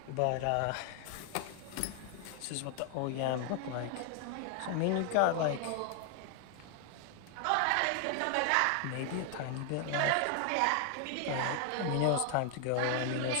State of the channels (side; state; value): both; different; correlation 0.00